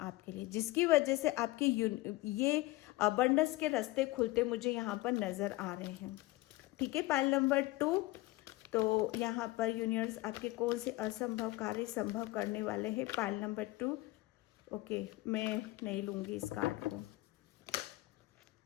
लिए, जिसकी वजह से आपके ये अबंडेंस के रास्ते खुलते मुझे यहाँ पर नजर आ रहे हैं। ठीक है, पाइल नंबर 2, तो यहाँ पर यूनिवर्स आपके कौन से असंभव कार्य संभव करने वाले हैं। पाइल नंबर 2, ओके, मैं नहीं लूंगी इस कार्ड को।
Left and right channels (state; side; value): quieter; right; 19.3 dB